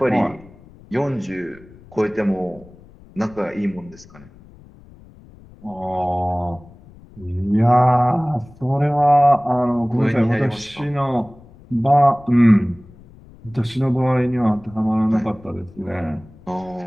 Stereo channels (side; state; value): left; noise; rumble, 23 dB below the sound